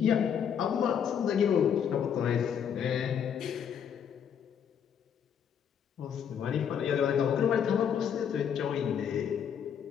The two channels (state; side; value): quieter; right; 8.1 dB